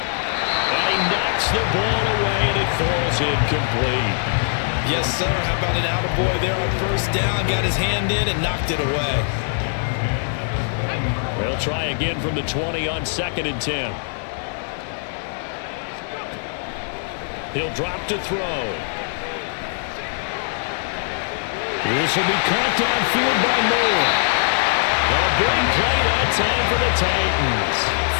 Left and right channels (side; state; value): right; silent; digital silence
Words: And he knocks the ball away, and it falls incomplete. Yes, sir. How about an attaboy there on 1st down? Got his hand in and knocked it away. They'll try again from the 20 on 2nd and 10. He'll drop to throw. This will be caught downfield by Moore. A big play that time for the Titans.